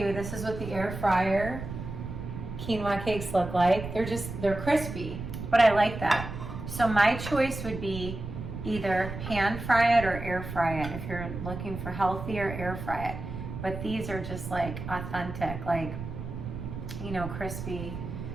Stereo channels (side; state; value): right; noise; rumble, 8 dB below the sound